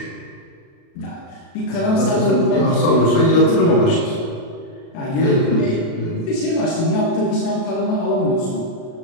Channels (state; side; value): late; right; 36 ms